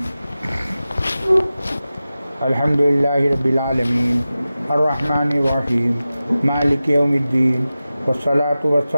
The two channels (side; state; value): both; inverted; correlation -0.95